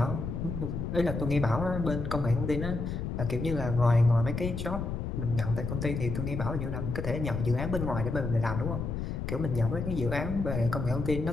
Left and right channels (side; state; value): left; noise; rumble, 3 dB below the sound